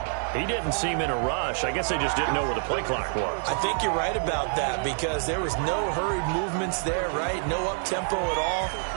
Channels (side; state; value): left; silent; 60 dB below the other